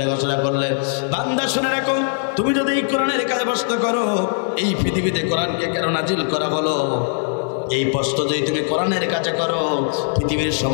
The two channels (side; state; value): right; silent; 66 dB below the other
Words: ঘোষণা করলেন, বান্দা শুনে রাখো, তুমি যদি এই কোরআনের কাছে প্রশ্ন করো, এই পৃথিবীতে কোরআনকে কেন নাজিল করা হলো, এই প্রশ্ন যদি তুমি কোরআনের কাছে করো, পৃথিবীর